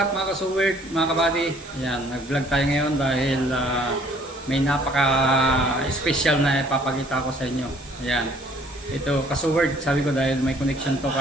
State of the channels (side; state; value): both; normal; correlation 0.59